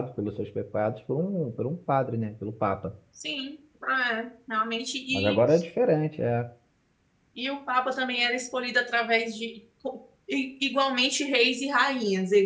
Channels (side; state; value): both; identical; correlation 1.00